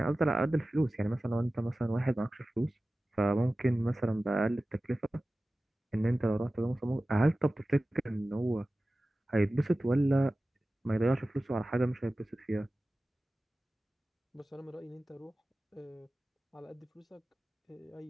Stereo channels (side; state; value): both; normal; correlation 0.96